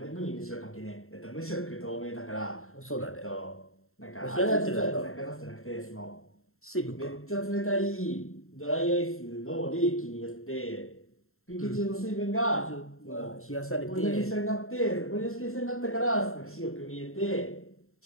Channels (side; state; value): right; late; 0.62 ms